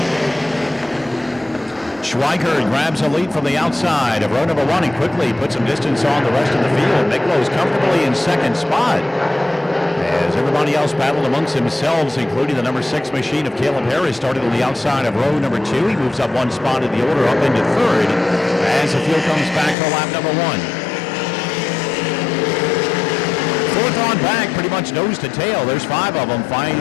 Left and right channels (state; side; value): drops out; right; at 19.8 s